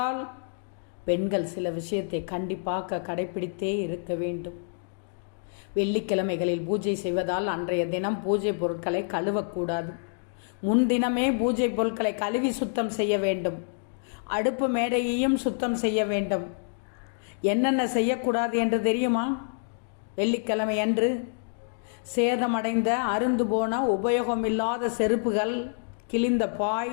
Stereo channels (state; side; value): silent; right; digital silence